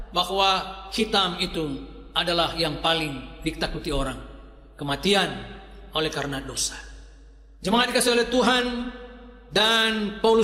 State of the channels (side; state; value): both; identical; correlation 1.00